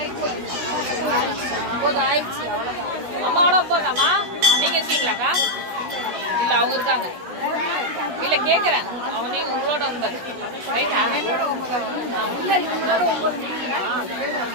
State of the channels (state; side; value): late; left; 17 ms